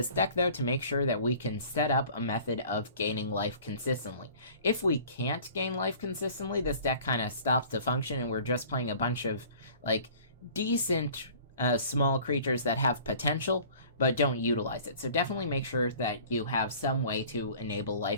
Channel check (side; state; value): both; inverted; correlation -0.48